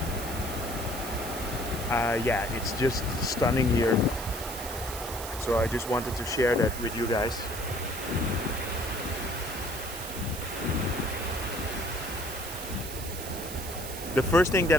yeah, it's just stunning here. So I just wanted to share that with you guys. The first thing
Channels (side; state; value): right; noise; hiss, 10 dB below the sound